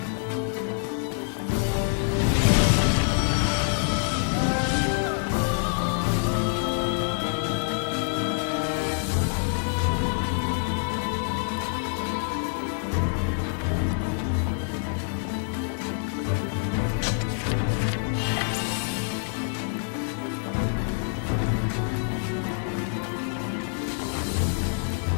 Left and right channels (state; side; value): silent; right; 61 dB below the other